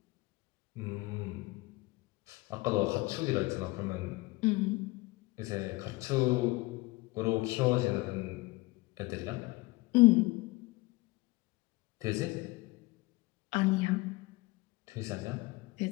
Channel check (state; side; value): quieter; right; 22.1 dB